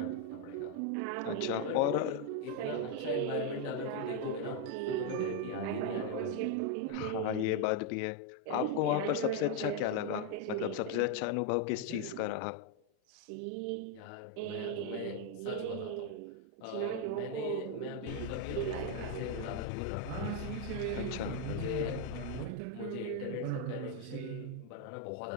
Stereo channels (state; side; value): different; both; correlation 0.01